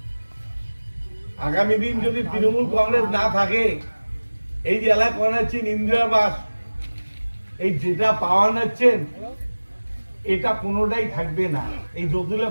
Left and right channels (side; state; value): both; inverted; correlation -1.00